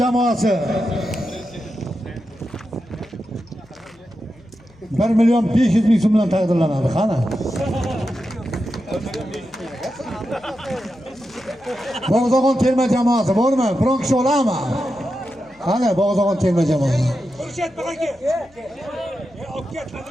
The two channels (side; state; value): left; noise; hum, 30 dB below the sound